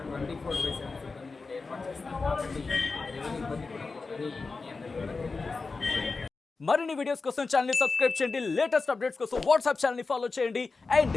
24/7 సిబ్బంది కూడా ఏర్పాటు చేస్తాం. కాబట్టి ఎవరి ఇబ్బంది కూడా పోదని మీ అందరికీ కూడా తెలియజేస్తాం. మరిన్ని వీడియోస్ కోసం ఛానల్ ని సబ్స్క్రైబ్ చేయండి. లేటెస్ట్ అప్డేట్స్ కోసం వాట్సాప్ ఛానల్ ని ఫాలో చేయండి. అండ్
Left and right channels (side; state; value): right; quieter; 4.1 dB